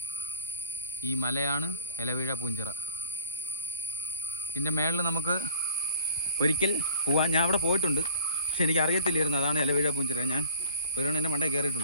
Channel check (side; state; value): both; inverted; correlation -0.48